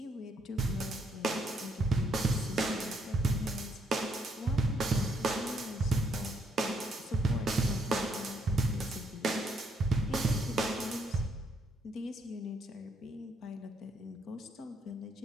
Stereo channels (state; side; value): normal; both; correlation 0.73